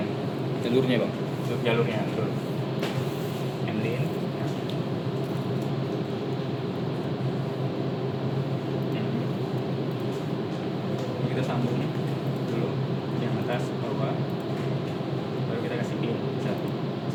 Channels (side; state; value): both; identical; correlation 1.00